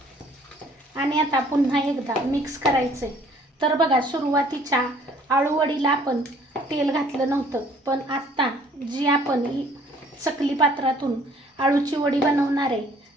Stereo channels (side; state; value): both; normal; correlation 0.57